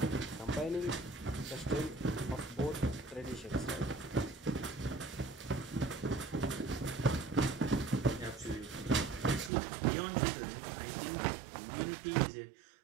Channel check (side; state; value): left; drops out; at 9.5 s